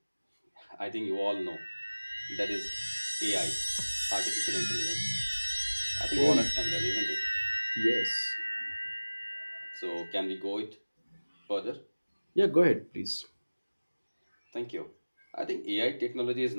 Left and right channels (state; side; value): inverted; both; correlation -1.00